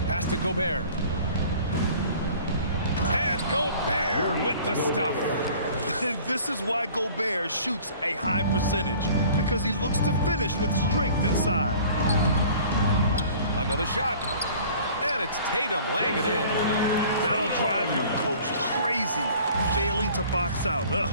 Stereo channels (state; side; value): inverted; both; correlation -0.48